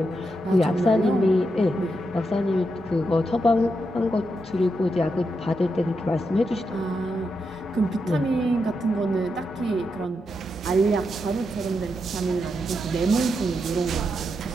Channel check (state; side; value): normal; both; correlation 0.84